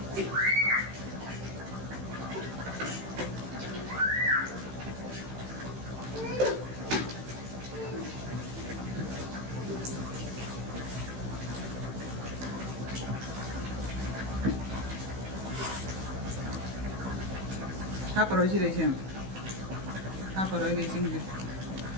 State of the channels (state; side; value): late; left; 16 ms